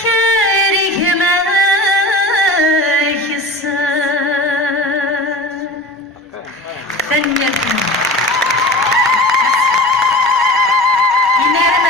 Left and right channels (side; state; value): both; normal; correlation 0.35